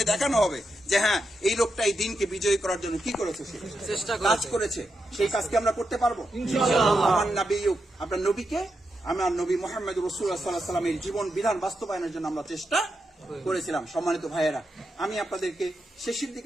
দেখানো হবে যে হ্যাঁ, এই লোকটা এই দিনকে বিজয়ী করার জন্য কি করেছে, সে কাজ করেছে। সেই কাজকে আমরা করতে পারবো ইনশাআল্লাহ। আমার নবী, আপনার নবীকে, আমার নবী মুহাম্মদ রাসূলুল্লাহ সাল্লাল্লাহু আলাইহি ওয়াসাল্লামের জীবন বিধান বাস্তবায়নের জন্য আমরা চেষ্টা করেছিলাম। সম্মানিত ভাইয়েরা, আমি আপনাদেরকে শেষের দিকে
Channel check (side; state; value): both; normal; correlation 0.85